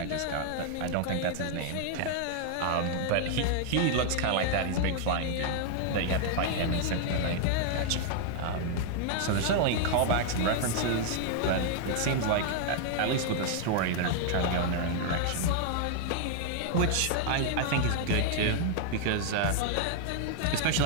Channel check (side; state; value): both; different; correlation 0.00